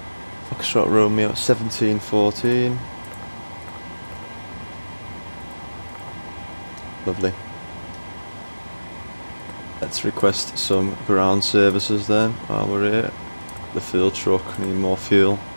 Foxtrot Romeo 1714. Lovely. Let's request some ground services then while we're here. The fuel truck, need more fuel.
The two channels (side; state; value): both; inverted; correlation -1.00